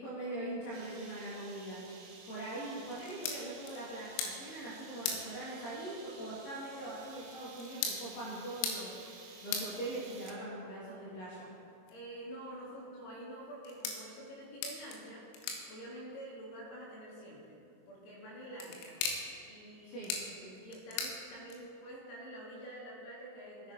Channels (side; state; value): right; late; 22 ms